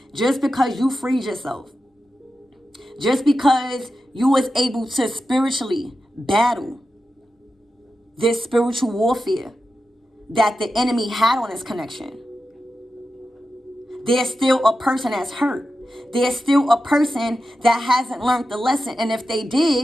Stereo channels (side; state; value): both; normal; correlation 0.91